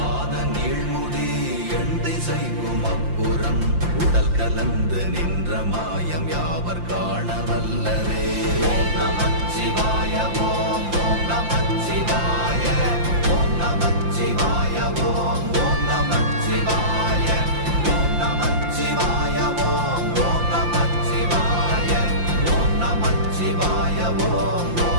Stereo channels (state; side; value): late; left; 5.8 ms